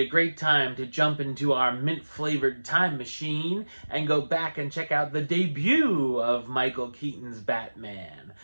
a great time to jump into our mint-flavored time machine and go back and check out the debut of Michael Keaton's Batman.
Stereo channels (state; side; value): inverted; both; correlation -1.00